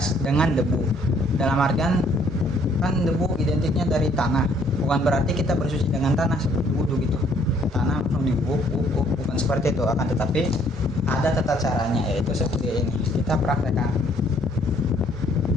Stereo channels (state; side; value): normal; both; correlation 0.63